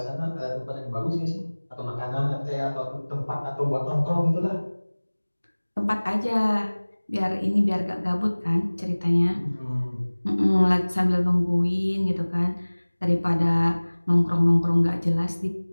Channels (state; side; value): inverted; both; correlation -1.00